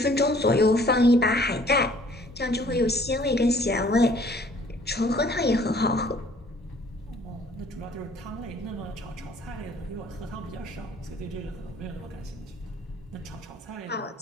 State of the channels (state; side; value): normal; both; correlation 0.57